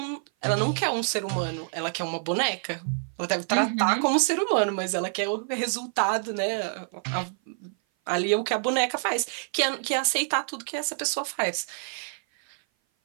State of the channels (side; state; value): left; silent; 56 dB below the other